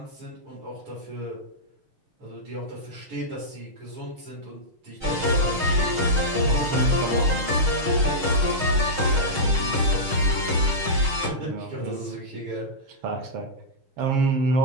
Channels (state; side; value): late; left; 6.3 ms